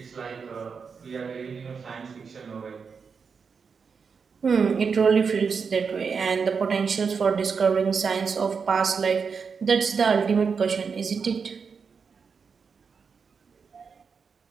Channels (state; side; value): quieter; left; 5.7 dB